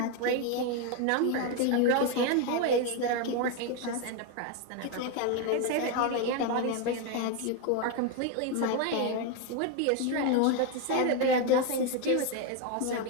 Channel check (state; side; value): different; both; correlation 0.02